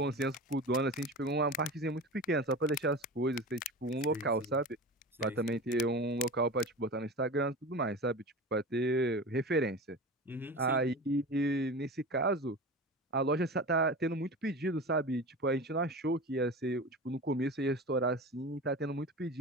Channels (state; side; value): normal; both; correlation 0.31